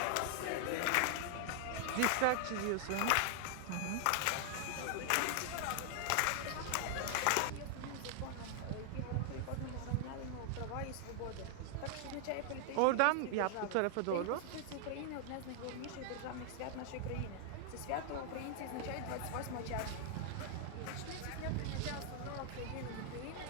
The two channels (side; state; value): both; different; correlation 0.00